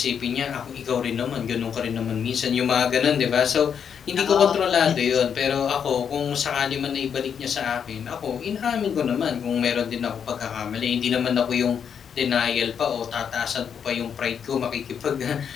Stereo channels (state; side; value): quieter; right; 7.6 dB